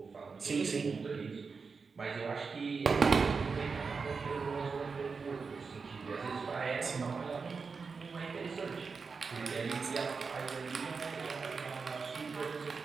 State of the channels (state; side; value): quieter; left; 5.0 dB